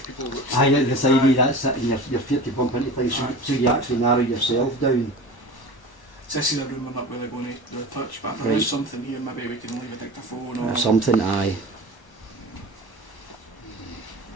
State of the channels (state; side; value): late; right; 1.1 ms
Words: Aye, at the side of that's it, and your feet to bump into things, Aye. so you actually narrow yourself down. So this is a room we're not really going to do a touch, but if there Right. is something here, maybe we can leave a dictaphone Or or something. Aye.